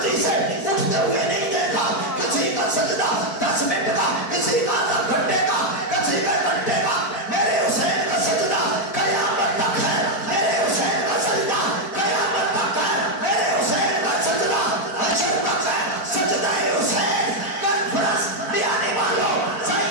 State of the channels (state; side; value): late; right; 4.5 ms